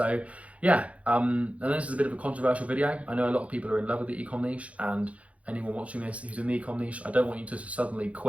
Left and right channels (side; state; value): left; late; 0.065 ms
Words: yeah, and this is a bit of a controversial video. I know a lot of people are in love with the ecom niche, and anyone watching this who's in the ecom niche, I don't want you to suddenly